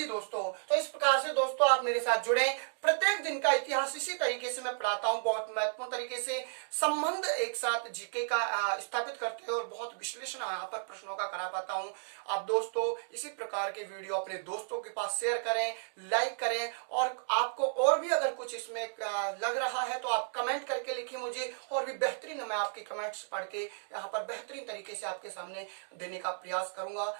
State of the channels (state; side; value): silent; left; digital silence